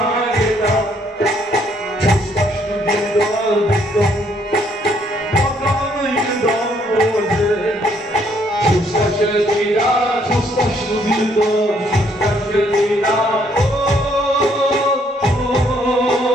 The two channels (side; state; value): both; normal; correlation 0.68